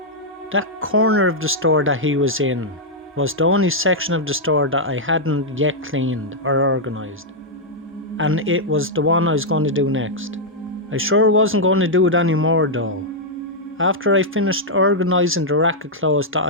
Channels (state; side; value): normal; both; correlation -0.05